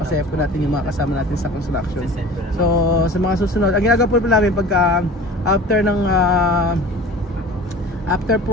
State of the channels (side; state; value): both; normal; correlation 0.40